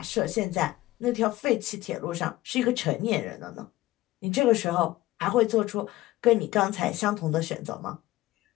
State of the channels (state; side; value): quieter; right; 17.0 dB